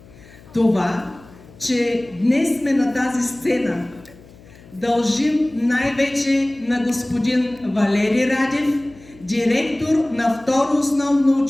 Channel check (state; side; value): noise; left; hum, 23 dB below the sound